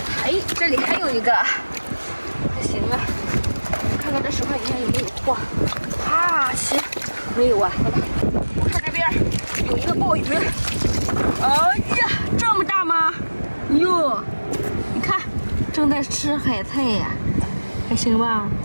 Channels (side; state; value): both; inverted; correlation -1.00